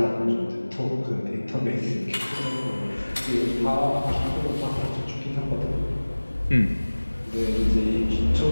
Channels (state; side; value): inverted; both; correlation -1.00